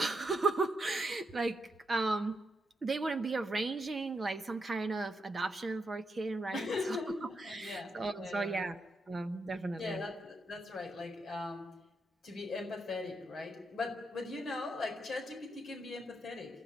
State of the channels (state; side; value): normal; both; correlation 0.82